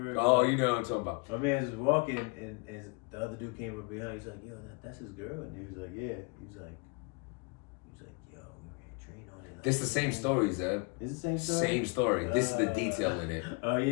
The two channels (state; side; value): quieter; right; 30.8 dB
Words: Oh, you know what I'm talking about. My man was walking, and the other dude came up behind. He's like, "Yo, that's his girl," and he was like, "Yeah." He was like, "Yo, we ran a train on it." Like, This is the same story, Zeb. Is it the same story? Same story. This is the detail in it. Oh